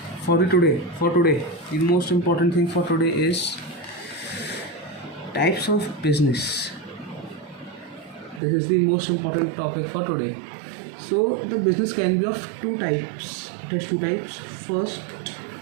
most important thing for today is types of business. This is the most important topic for today. So the business can be of two types. It has two types. First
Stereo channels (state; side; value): drops out; left; at 8.4 s